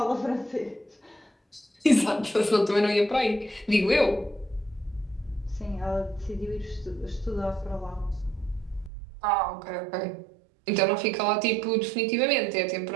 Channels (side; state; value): left; drops out; at 8.9 s